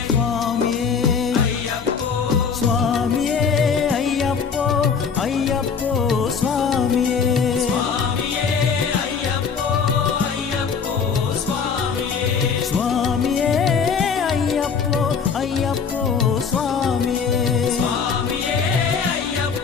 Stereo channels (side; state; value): right; quieter; 6.0 dB